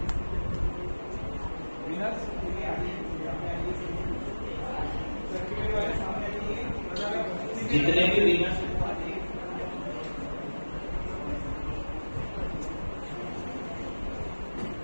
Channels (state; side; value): inverted; both; correlation -1.00